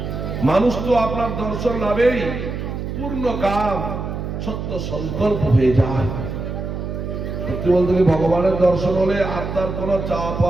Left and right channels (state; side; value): noise; right; hum, 5 dB below the sound